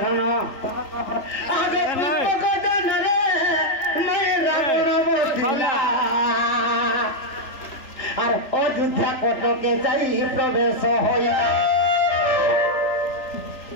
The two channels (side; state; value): right; late; 3.4 ms